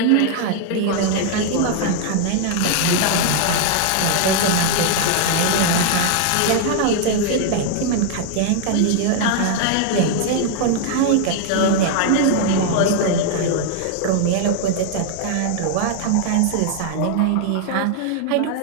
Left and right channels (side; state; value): both; different; correlation 0.00